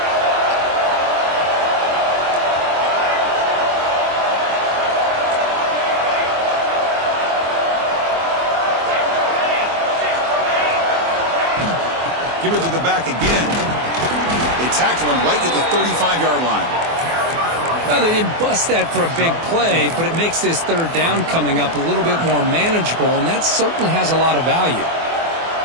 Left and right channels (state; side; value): late; left; 24 ms